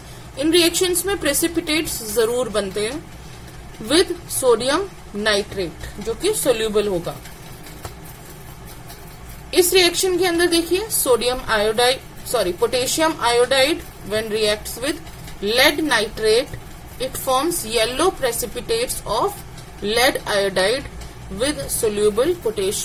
इन रिएक्शंस में प्रेसिपिटेट्स जरूर बनते हैं विद सोडियम नाइट्रेट जो कि सोल्यूबल होगा। इस रिएक्शन के अंदर देखिए potassium iodide when reacts with lead nitrate it forms yellow precipitates of lead iodide with soluble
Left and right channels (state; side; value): identical; both; correlation 1.00